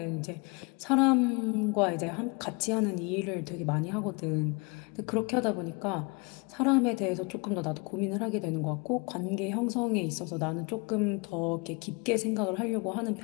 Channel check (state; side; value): quieter; right; 30.1 dB